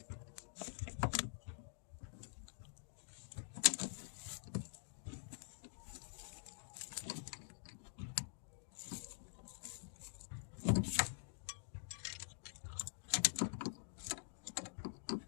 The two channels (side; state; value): right; silent; digital silence